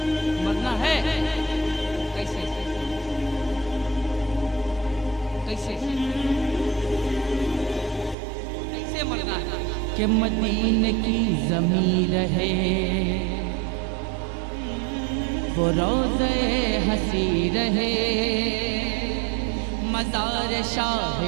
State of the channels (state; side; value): drops out; left; at 8.2 s